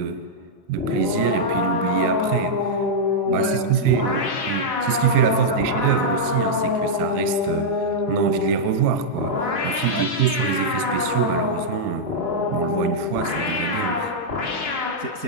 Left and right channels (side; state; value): left; late; 4.3 ms